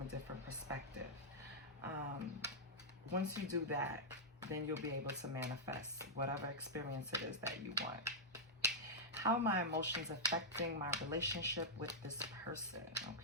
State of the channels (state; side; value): normal; both; correlation -0.08